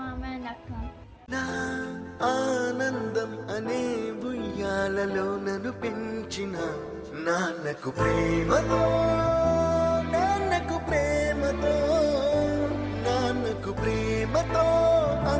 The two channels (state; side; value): identical; both; correlation 1.00